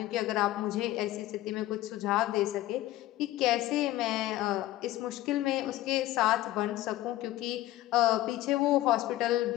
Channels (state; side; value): quieter; right; 15.6 dB